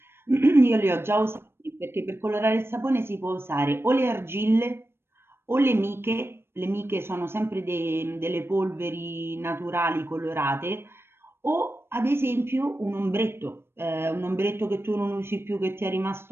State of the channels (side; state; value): left; late; 0.12 ms